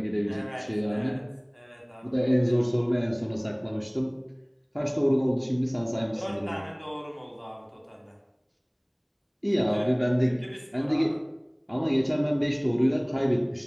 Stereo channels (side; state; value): both; identical; correlation 1.00